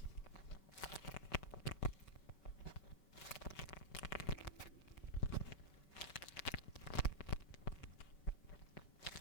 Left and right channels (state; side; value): late; right; 5.2 ms